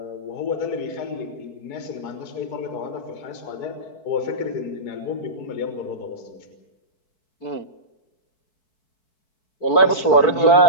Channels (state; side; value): late; right; 4.5 ms